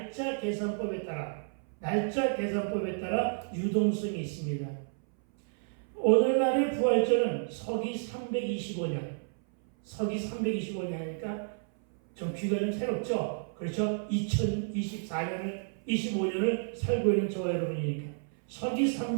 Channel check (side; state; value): left; silent; 57 dB below the other